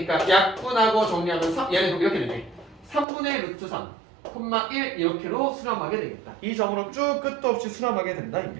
약분하고 정리하면 얘는 이렇게 되네. 3분의 루트 3 콤마 1 이렇게로 수렴하게 되겠다. 이 점으로 쭉 끝도 없이 수렴하게 된다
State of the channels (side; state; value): left; drops out; at 3.1 s